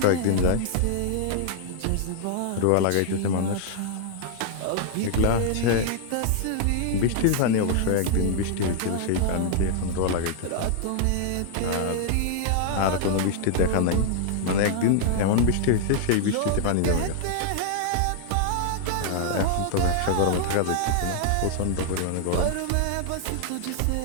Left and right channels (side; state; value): both; different; correlation 0.00